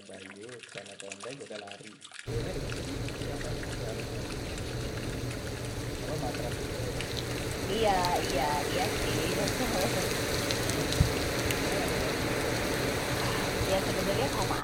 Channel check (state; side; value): identical; both; correlation 1.00